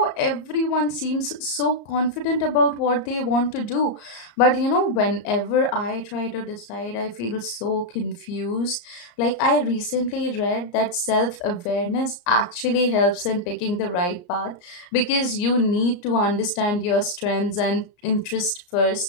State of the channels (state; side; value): late; right; 34 ms